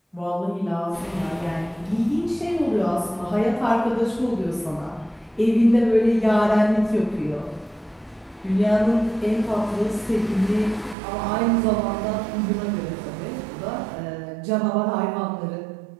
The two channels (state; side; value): drops out; left; at 11.0 s